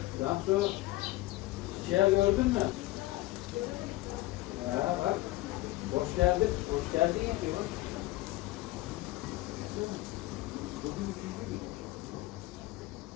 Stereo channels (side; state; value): right; quieter; 18.5 dB